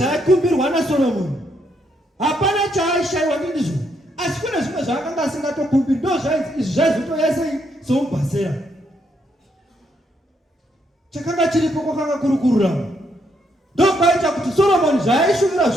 naSolomoni. Hapana chaaishayiwa ndizvo. Asi kune zvimwe zvaakanga asingatokumbiri. Ndo zvainzi izvi zvaizotoya sei somubhasera. Chakanga chiripo kwakanga kuri kururama. Ndokwaita kuti Solomoni zvaaishumira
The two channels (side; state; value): both; normal; correlation 0.75